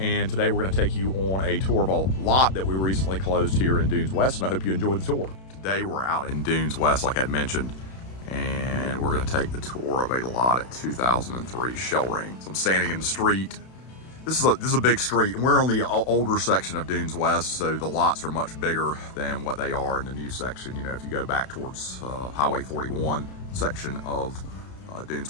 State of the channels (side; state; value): right; late; 32 ms